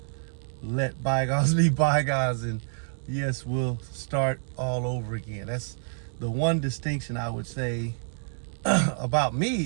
let bygones be bygones, and yes, we'll start all over again. That's the one distinction I would say about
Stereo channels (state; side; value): silent; left; digital silence